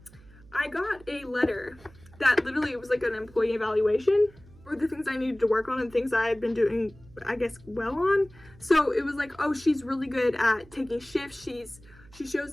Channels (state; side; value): noise; right; hum, 24 dB below the sound